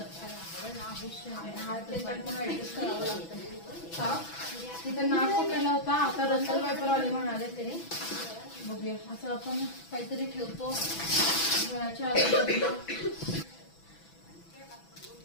तिथं नाक पकडला होता, आता रसल वायपर आले म्हणाले तरी बघूया. असं आपण काहीतरी ठेवतो घराच्या आजूबाजूला.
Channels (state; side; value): late; right; 6.0 ms